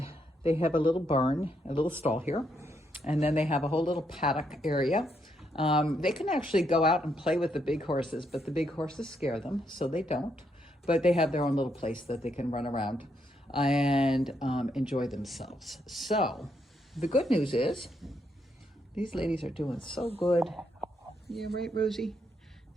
they have a little barn, a little stall here. And then they have a whole little paddock area. They can actually go out and play with the big horses, but the big horses scare them, so they don't. But they have their own little place that they can run around and enjoy themselves. So the good news is these ladies are doing so good. Yeah, right, Rosie?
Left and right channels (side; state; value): both; normal; correlation 0.77